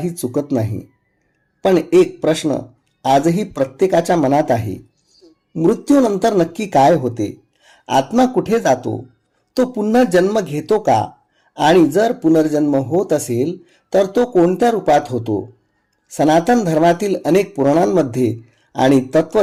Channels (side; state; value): both; identical; correlation 1.00